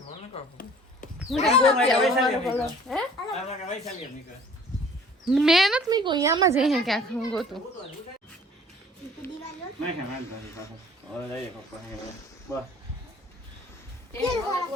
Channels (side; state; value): both; normal; correlation 0.51